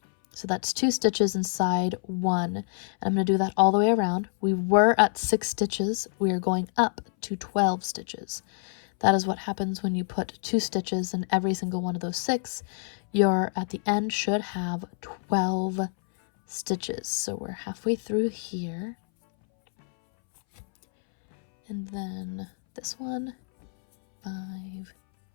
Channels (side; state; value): right; silent; 60 dB below the other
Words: So that's 2 stitches inside 1. And I'm going to do that all the way around. We were at 6 stitches. We are going up to 12 stitches. That is what happens when you put 2 stitches in every single one of those 6. Your at the end should have 12 stitches. So we're halfway through here. And then this one, 5,